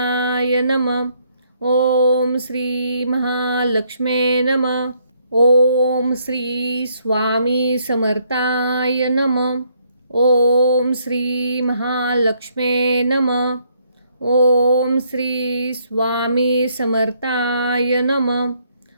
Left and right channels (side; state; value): both; inverted; correlation -0.70